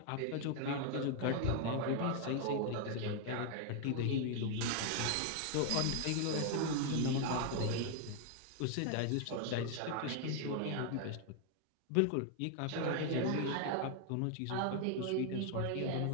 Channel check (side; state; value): both; different; correlation 0.00